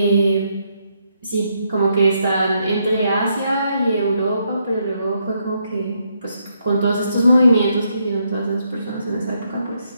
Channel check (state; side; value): inverted; both; correlation -0.77